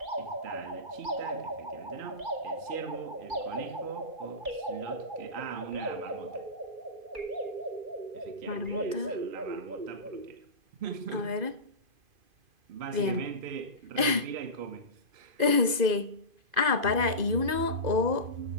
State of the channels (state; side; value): late; left; 2.0 ms